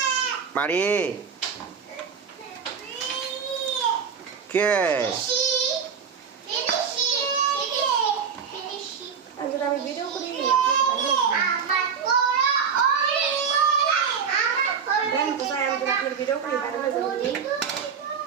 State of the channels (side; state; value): left; quieter; 6.6 dB